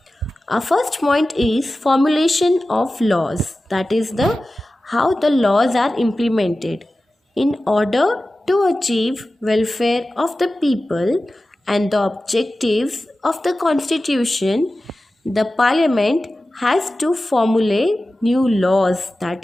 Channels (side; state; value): both; normal; correlation 0.95